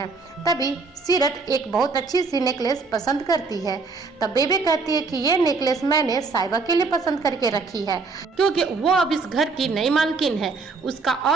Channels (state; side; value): quieter; left; 4.2 dB